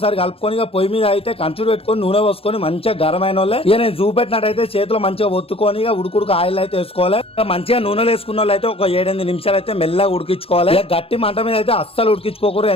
కలుపుకొని ఇక పొయ్యి మీద అయితే కంచుడు పెట్టుకొని నూనె పోసుకొని మంచిగా గరమైన వాళ్ళే ఇక నేను చూపెట్టినట్టయితే చేతిలో మంచిగా ఒత్తుకొని ఇక ఉడుకుడుకు ఆయిల్ అయితే వేసుకోవాలి. మంచిగా నూనెలు వేసుకున్న వాళ్ళు అయితే ఒక 7-8 నిమిషాలు అయితే మెల్లగా ఉడికించుకోవాలి. గట్టి మంట మీద అయితే అస్సలు ఉడికించుకోకూడదు,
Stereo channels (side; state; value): right; late; 0.27 ms